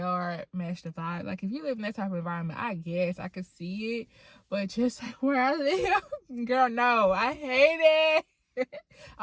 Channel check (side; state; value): both; identical; correlation 1.00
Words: match the vibe. Like, if you live in that type of environment, I guess I could see it. But just like where I live, girl, no, I hate it.